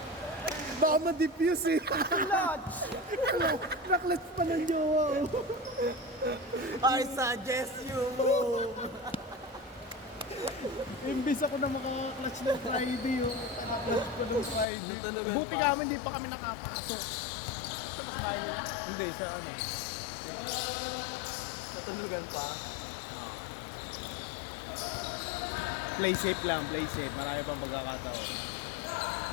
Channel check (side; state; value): right; drops out; at 14.7 s